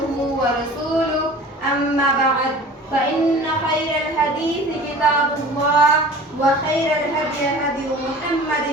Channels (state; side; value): normal; both; correlation 0.42